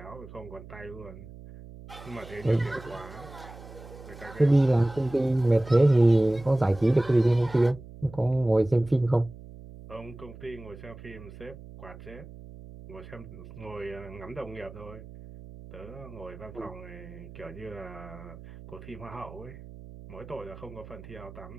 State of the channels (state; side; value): noise; right; hum, 16 dB below the sound